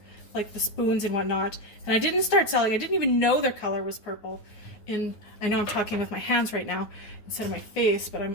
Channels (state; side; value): late; right; 9.6 ms